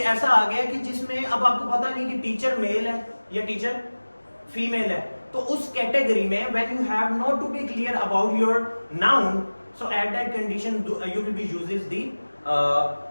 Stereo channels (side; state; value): both; inverted; correlation -1.00